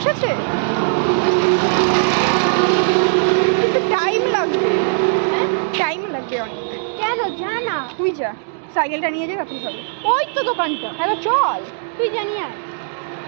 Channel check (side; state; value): left; silent; digital silence